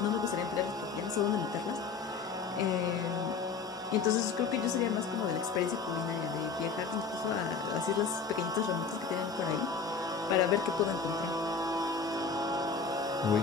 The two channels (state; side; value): quieter; right; 5.2 dB